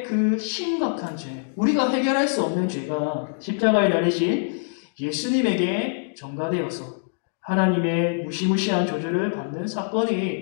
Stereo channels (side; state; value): right; silent; digital silence